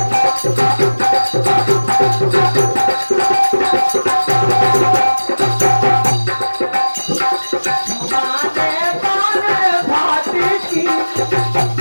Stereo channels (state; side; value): inverted; both; correlation -1.00